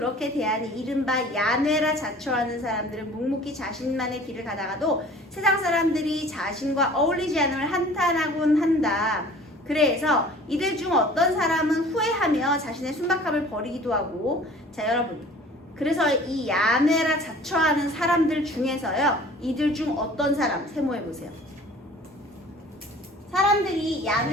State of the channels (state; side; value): normal; both; correlation 0.47